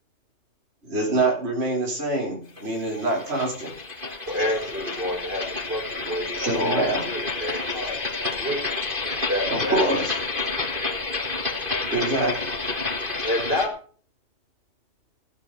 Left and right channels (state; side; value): late; left; 2.5 ms